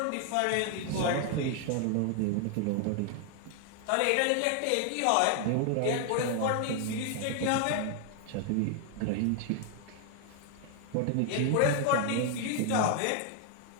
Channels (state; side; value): different; both; correlation 0.00